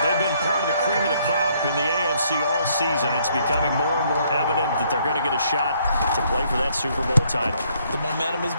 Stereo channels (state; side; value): inverted; both; correlation -0.68